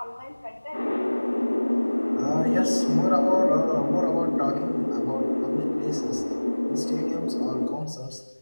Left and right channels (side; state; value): both; inverted; correlation -1.00